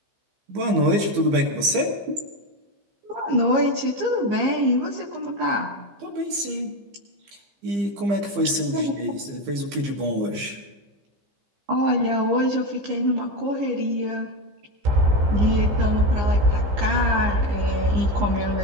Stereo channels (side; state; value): left; late; 15 ms